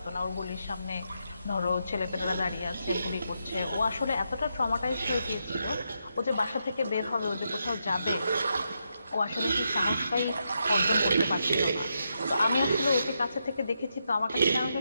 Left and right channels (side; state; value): both; inverted; correlation -0.83